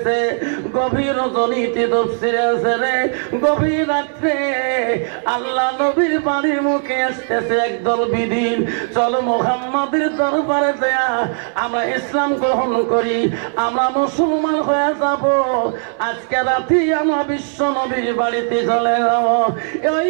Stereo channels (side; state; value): left; silent; 67 dB below the other